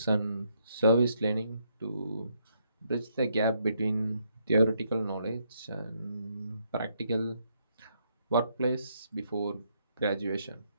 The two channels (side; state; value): both; inverted; correlation -0.74